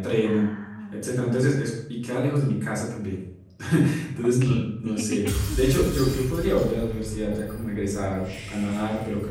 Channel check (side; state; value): both; identical; correlation 1.00